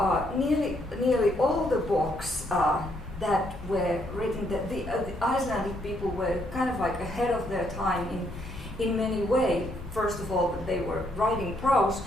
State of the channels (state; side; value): normal; both; correlation 0.73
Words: Nearly all the books that were written, the Icelandic people were kind of like ahead of their time in many ways. First of all, they were writing prose,